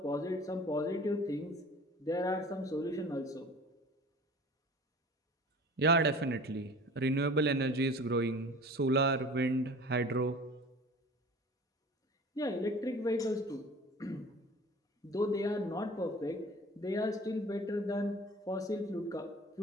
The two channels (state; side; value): normal; both; correlation 0.43